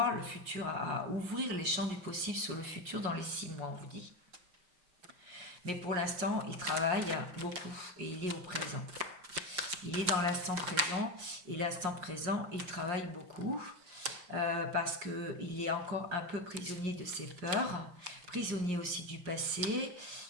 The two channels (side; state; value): left; late; 5.6 ms